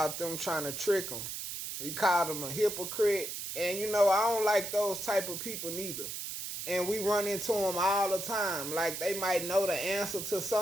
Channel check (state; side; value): noise; right; hiss, 6 dB below the sound